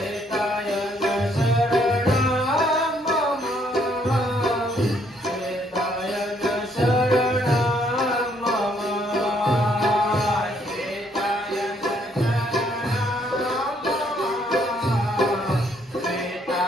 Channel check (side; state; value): both; normal; correlation 0.68